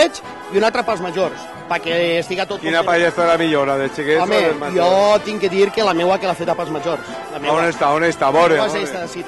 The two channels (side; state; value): both; identical; correlation 1.00